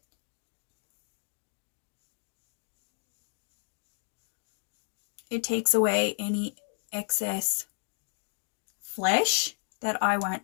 It takes away any excess flesh that I want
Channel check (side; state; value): right; silent; digital silence